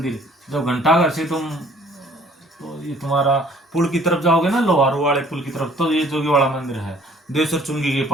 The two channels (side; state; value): both; normal; correlation 0.57